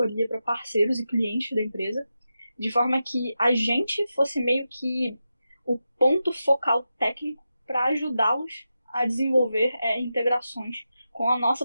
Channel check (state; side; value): inverted; both; correlation -0.90